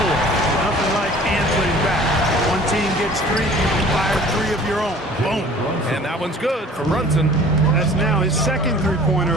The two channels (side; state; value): both; normal; correlation 0.48